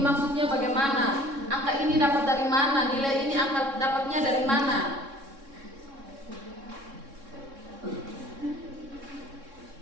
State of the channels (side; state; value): left; late; 3.6 ms